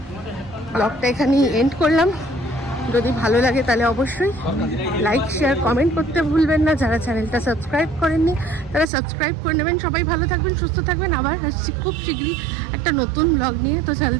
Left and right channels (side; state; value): left; drops out; at 8.8 s